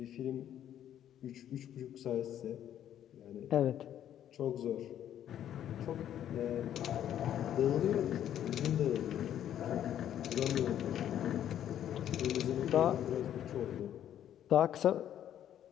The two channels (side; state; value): right; quieter; 10.7 dB